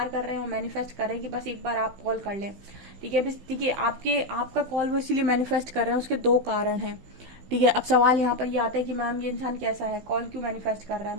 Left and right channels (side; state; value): left; late; 16 ms